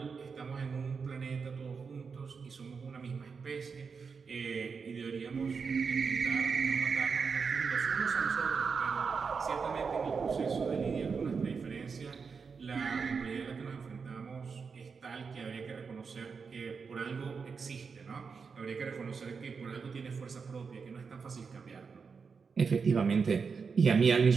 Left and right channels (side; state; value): left; quieter; 5.5 dB